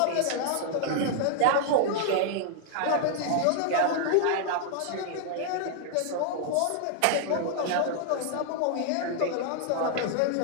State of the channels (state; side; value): different; both; correlation 0.00